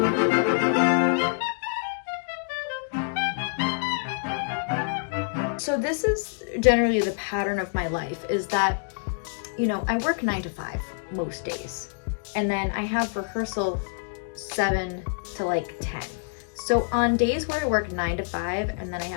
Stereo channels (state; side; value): silent; right; digital silence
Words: So this is generally the pattern of my life, is that, you know, I work 9 to 5 most days. And then I have rehearsal 7 to like 10. So on days where I work 9 to 5 and then I